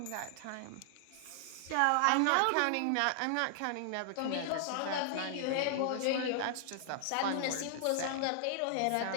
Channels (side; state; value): both; different; correlation 0.00